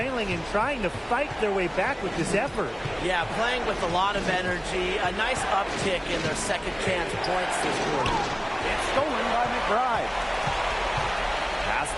and trying to fight their way back with this effort. Yeah, playing with a lot of energy. A nice uptick in their second chance points this quarter. It's stolen by McBride. Pass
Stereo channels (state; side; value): identical; both; correlation 1.00